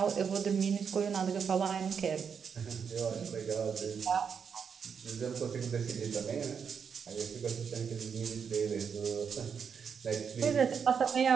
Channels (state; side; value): quieter; left; 6.7 dB